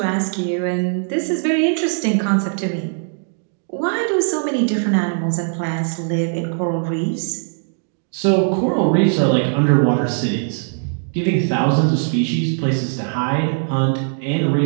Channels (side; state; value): left; silent; 63 dB below the other